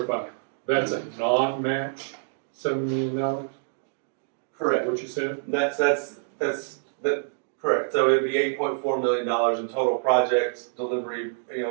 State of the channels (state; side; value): silent; left; digital silence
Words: that's a non-match $7 million? Correct. What you said? That's correct. So it'd be $8.4 million in total projects, delivery,